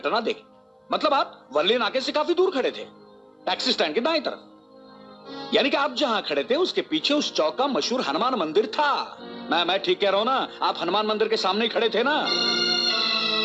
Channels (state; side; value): identical; both; correlation 1.00